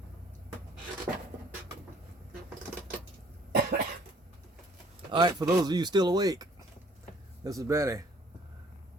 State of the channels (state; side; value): normal; both; correlation 0.58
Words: Alright, for those of you still awake, this is Benny.